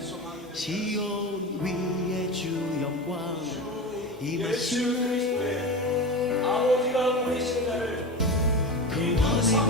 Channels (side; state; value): both; normal; correlation 0.26